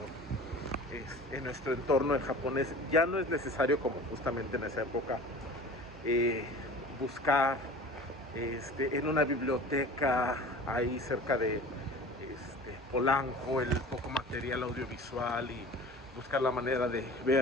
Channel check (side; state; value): both; normal; correlation 0.40